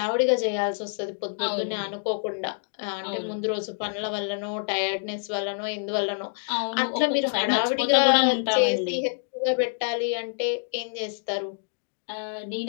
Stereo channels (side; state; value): right; silent; digital silence